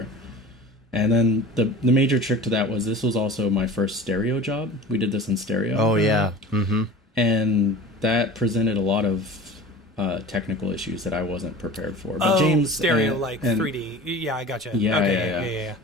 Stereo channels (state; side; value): normal; both; correlation 0.39